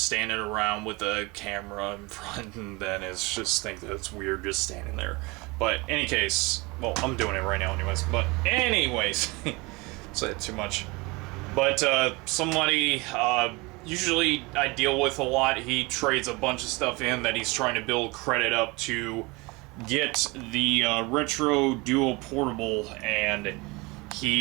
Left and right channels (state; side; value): quieter; left; 25.3 dB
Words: standing around with a camera in front, then it's just think that it's weird just standing there. But any case, well, I'm doing it right now anyways, but anyways, said too much. But somebody, usually I deal with a lot, he trades a bunch of stuff in that he's trying to build credit up to get the Retro Duo Portable, and